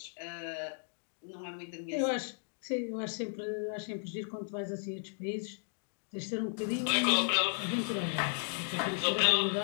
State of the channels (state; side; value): silent; right; 55 dB below the other